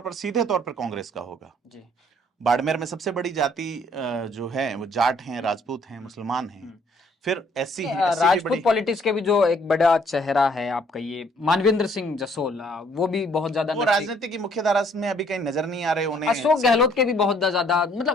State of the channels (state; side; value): normal; both; correlation 0.63